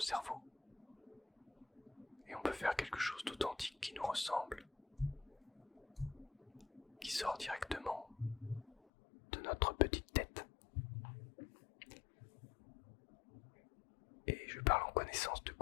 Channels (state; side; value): drops out; right; at 8.8 s